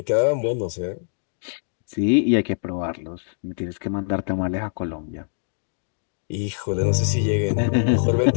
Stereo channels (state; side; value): silent; right; digital silence